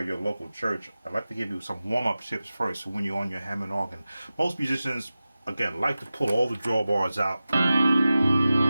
your local church, I'd like to give you some warm-up tips first. So when you're on your Hammond organ, most musicians, again, like to pull all the drawbars out,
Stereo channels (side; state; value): both; inverted; correlation -0.95